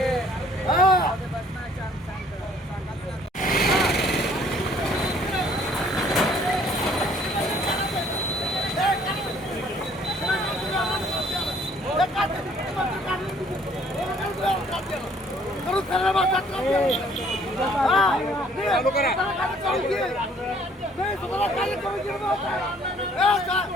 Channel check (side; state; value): both; normal; correlation 0.60